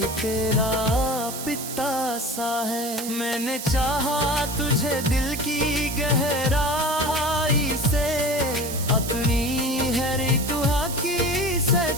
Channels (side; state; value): right; noise; hiss, 8 dB below the sound